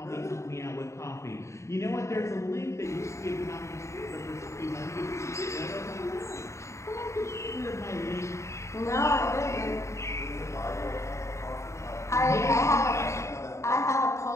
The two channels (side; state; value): right; late; 0.14 ms